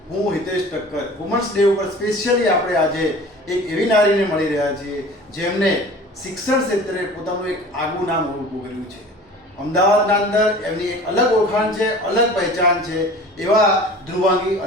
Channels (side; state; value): both; normal; correlation 0.42